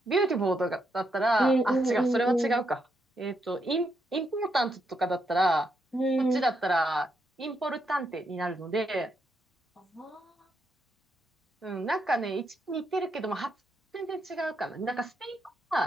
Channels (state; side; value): normal; both; correlation 0.80